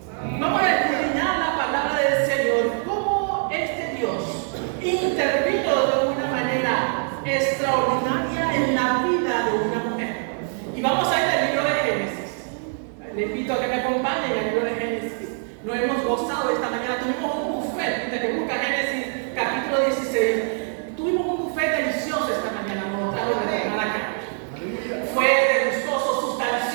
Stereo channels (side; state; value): left; silent; 55 dB below the other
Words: Vamos a escudriñar la palabra del Señor, cómo este Dios intervino de una manera extraordinaria en la vida de una mujer. Y vamos a ir al libro de Génesis. Le invito a que me acompañen al libro de Génesis. Lo hemos gozado esta mañana. Tuvimos un buffet, desde que busca Génesis capítulo 16. Tuvimos un buffet delicioso esta mañana. Nos trajo de la hermana acá. Fue delicioso,